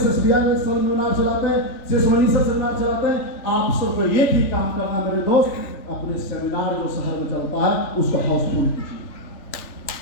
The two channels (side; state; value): right; late; 3.4 ms